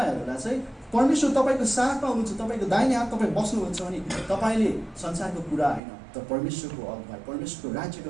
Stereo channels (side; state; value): left; drops out; at 5.8 s